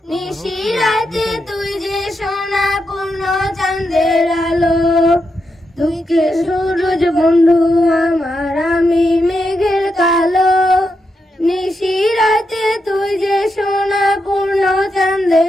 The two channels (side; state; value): both; normal; correlation 0.84